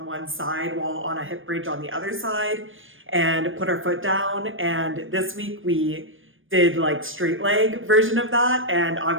one side while on a hip bridge on the other side and put our foot down. And this week we did like straight leg version of that, and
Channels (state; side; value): late; left; 0.58 ms